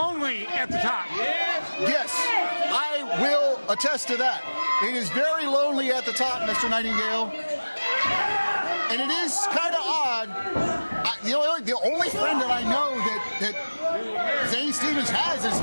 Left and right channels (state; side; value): inverted; both; correlation -1.00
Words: at the top. Yes, I will attest to that. It is very lonely at the top, Mr. Nightingale. And it is kind of odd. The only friend that I know that Zane Stevens has is